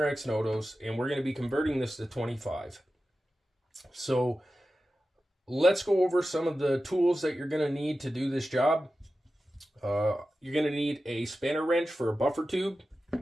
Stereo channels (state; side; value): normal; both; correlation 0.93